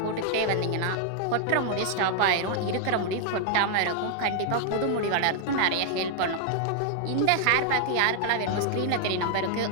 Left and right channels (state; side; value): different; both; correlation 0.00